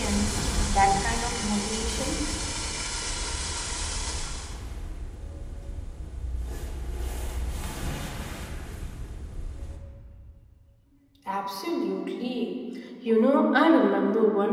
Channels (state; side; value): identical; both; correlation 1.00